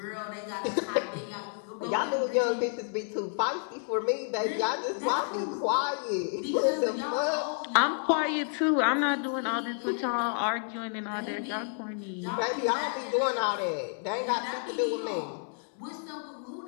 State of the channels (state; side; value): silent; right; 58 dB below the other